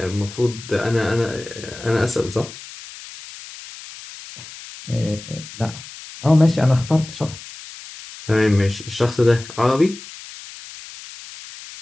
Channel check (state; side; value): noise; left; hiss, 15 dB below the sound